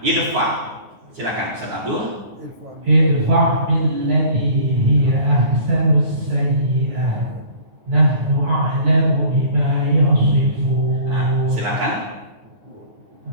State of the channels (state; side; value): late; left; 9.5 ms